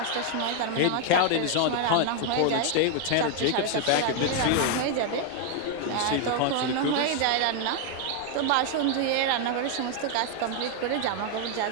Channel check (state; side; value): different; both; correlation 0.01